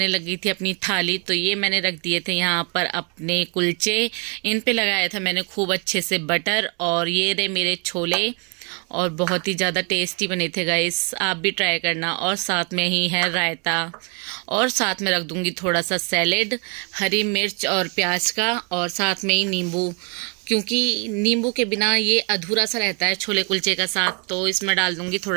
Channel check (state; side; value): quieter; left; 35.4 dB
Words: लगी थी अपनी थाली। तो ये मैंने रख दिए थे यहाँ पर अपने कुलचे, इन पे लगाया था मैंने खूब अच्छे से बटर। और ये रहे मेरे छोले, और बहुत ही ज़्यादा टेस्टी बने थे गाइस, आप भी ट्राई करना। और साथ में ही है रायता, और साथ में रख दूँगी थोड़ा सा सैलेड, हरी मिर्च और प्याज का, और साथ में ही नींबू, क्योंकि नींबू के बिना ये अधूरा सा रहता है छोले कुलचे का साथ। तो इसमें डाल दूँगी